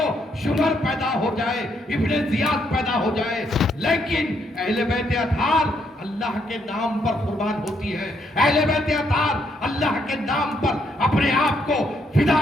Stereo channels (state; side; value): normal; both; correlation 0.74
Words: شمر پیدا ہو جائے، ابن زیاد پیدا ہو جائے، لیکن اہل بیت اطہار اللہ کے نام پر قربان ہوتی ہے. اہل بیت اطہار اللہ کے نام پر اپنے آپ کو فدا